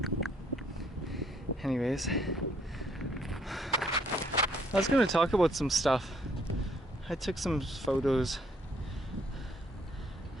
Anyways, I was gonna talk about some stuff. I took some photos,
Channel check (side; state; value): both; normal; correlation 0.66